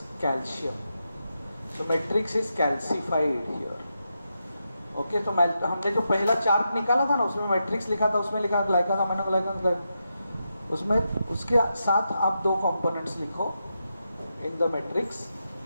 calcium. So matrix is calcified here. Okay, तो हमने जो पहला चार्ट निकाला था ना, उसमें मैट्रिक्स लिखा था, उसमें लिखा ग्लाइकन अमीनोग्लाइकन. उसमें उसके साथ आप दो कंपोनेंट्स लिखो in the matrix.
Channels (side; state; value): both; inverted; correlation -0.86